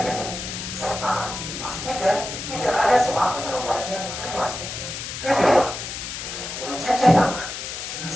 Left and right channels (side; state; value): left; noise; hiss, 7 dB below the sound